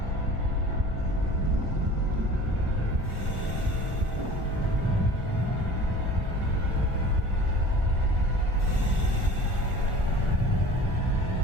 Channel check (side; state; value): left; late; 1.6 ms